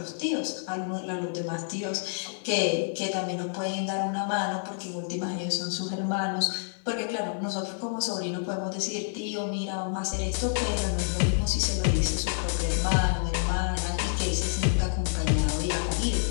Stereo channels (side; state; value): right; silent; digital silence